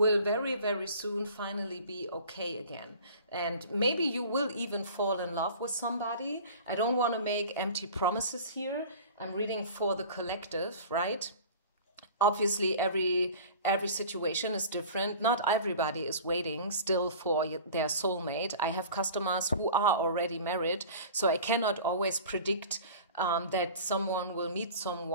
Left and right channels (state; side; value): inverted; both; correlation -0.41